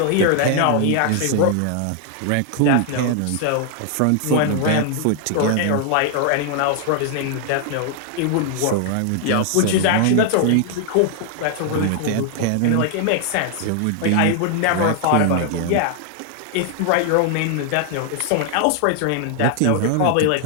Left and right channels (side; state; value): both; different; correlation 0.00